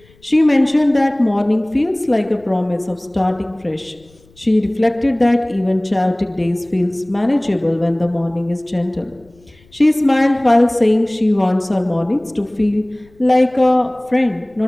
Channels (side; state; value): left; noise; rumble, 30 dB below the sound